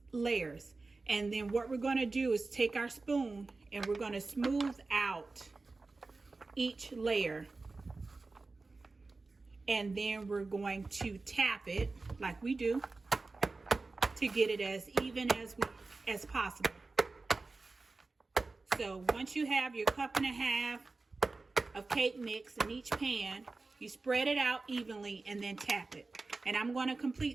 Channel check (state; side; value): quieter; left; 3.7 dB